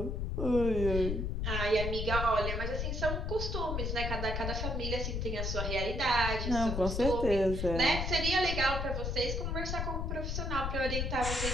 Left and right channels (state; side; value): noise; left; rumble, 1 dB below the sound